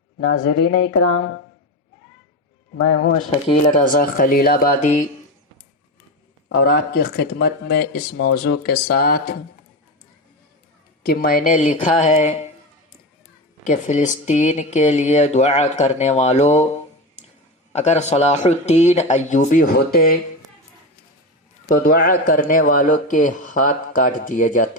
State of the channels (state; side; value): normal; both; correlation 0.20